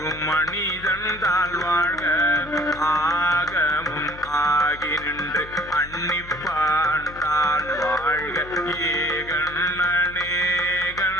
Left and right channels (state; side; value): noise; left; hum, 17 dB below the sound